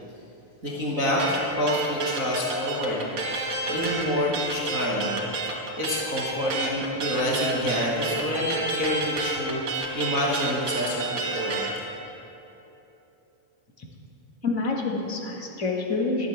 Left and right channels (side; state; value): left; late; 3.9 ms